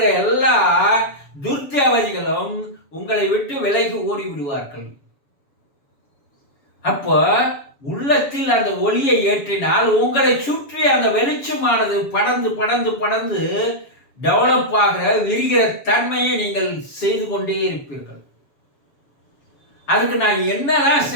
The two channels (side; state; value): right; late; 7.2 ms